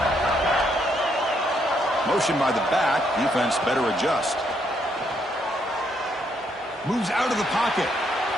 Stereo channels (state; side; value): normal; both; correlation 0.74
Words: Motion by the back. Defense better adjust. Moves out of the pocket.